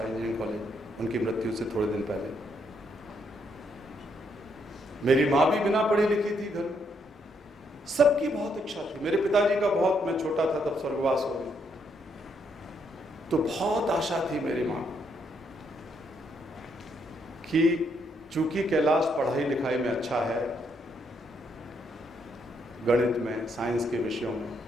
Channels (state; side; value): normal; both; correlation 0.74